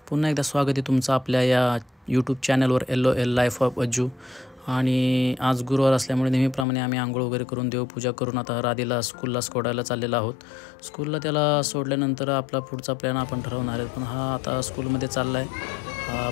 पुन्हा एकदा स्वागत आहे तुमचं आपल्या या यूट्यूब चॅनलवर LOL लाईफ ऑफ अज्जू। आणि आज गुरुवार असल्यामुळे नेहमीप्रमाणे आम्ही आंघोळ वगैरे करून देवपूजा करून आता राधीला स्कूलला सोडायला चाललेलो आहोत। स्कूलला त्याला सोडल्यानंतर आपला पुढचा प्लॅन आपण ठरवणार आहे, पण हा आता स्कूलमध्ये चालला आहे,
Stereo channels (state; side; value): drops out; right; at 6.7 s